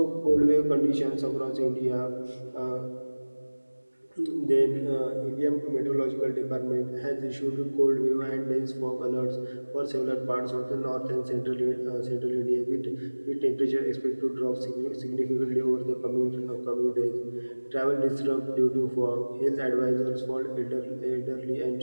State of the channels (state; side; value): inverted; both; correlation -1.00